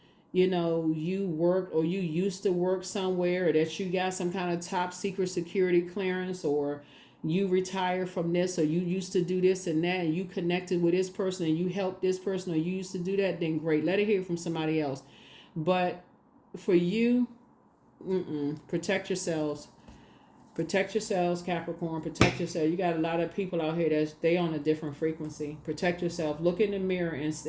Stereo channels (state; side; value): identical; both; correlation 1.00